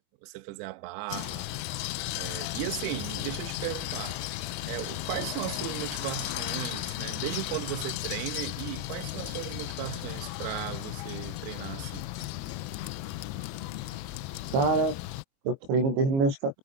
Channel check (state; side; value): late; left; 22 ms